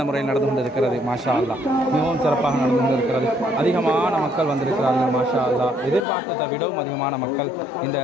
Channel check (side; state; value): right; drops out; at 6.1 s